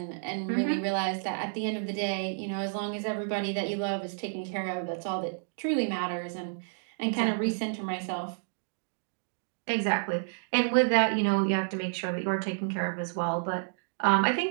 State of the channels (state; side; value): silent; left; digital silence